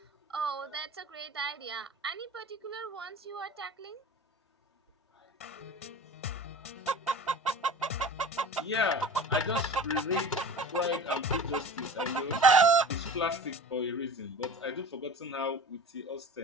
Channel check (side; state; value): both; normal; correlation 0.38